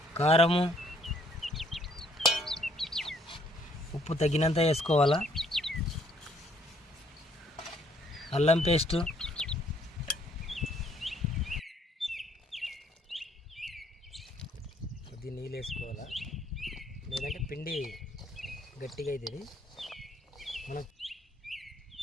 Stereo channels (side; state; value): both; normal; correlation 0.65